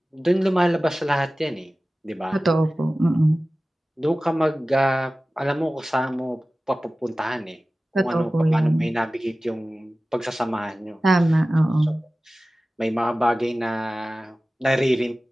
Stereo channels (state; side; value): normal; both; correlation 0.97